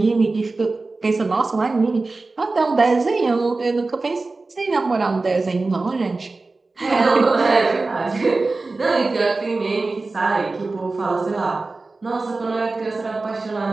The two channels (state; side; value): quieter; left; 3.5 dB